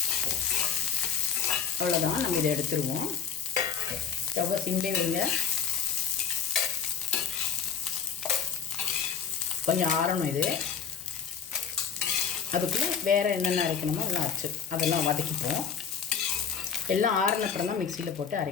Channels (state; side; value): quieter; right; 7.1 dB